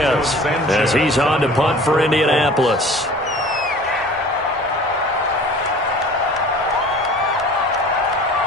as he's on to punt for Indianapolis.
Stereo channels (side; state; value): both; normal; correlation 0.45